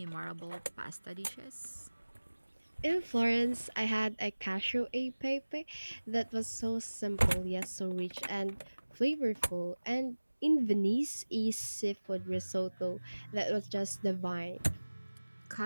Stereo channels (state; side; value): inverted; both; correlation -1.00